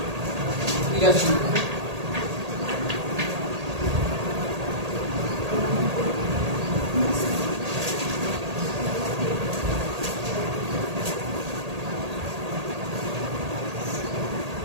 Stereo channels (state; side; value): late; left; 1.8 ms